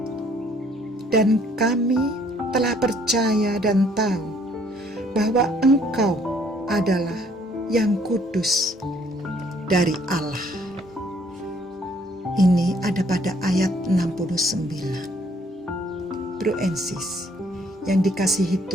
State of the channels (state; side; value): normal; both; correlation 0.63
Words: Dan kami telah percaya dan tahu bahwa Engkau adalah yang kudus dari Allah. Ini ada pada ayat 69. Bro and sis yang dikasihi